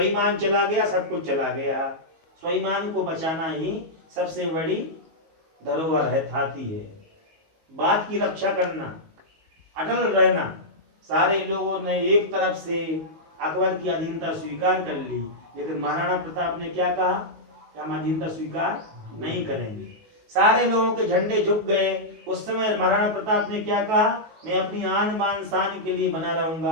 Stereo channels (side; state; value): left; late; 19 ms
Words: चला गया सब कुछ चला गया। स्वाभिमान को बचाना ही सबसे बड़ी धरोहर है, थाती है। बात की रक्षा करना, अटल रहना। सारे लोगों ने एक तरफ से अकबर की अधीनता स्वीकार कर ली, लेकिन महाराणा प्रताप ने क्या कहा कि हम अधीनता स्वीकार नहीं करेंगे। सारे लोगों के झंडे झुक गए। उस समय महाराणा प्रताप ने क्या कहा, मैं अपनी आन बान शान के लिए बना